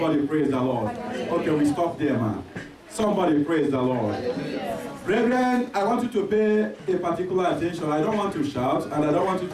praise the Lord. Okay, we stop there, man. Somebody praise the Lord. Brethren, I want you to pay a particular attention. I don't want to shout, and I don't want you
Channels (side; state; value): both; identical; correlation 1.00